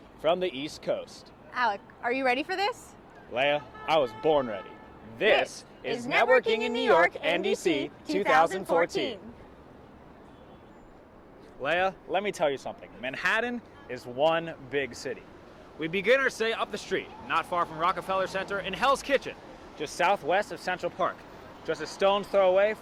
from the East Coast. Alec, are you ready for this? Leah, I was born ready. This is Networking in New York, NDC 2014. Leah, let me tell you something. Manhattan is one big city. We begin our stay up the street, not far from Rockefeller Center in Hell's Kitchen, just southwest of Central Park, just a stone's throw away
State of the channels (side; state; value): both; identical; correlation 1.00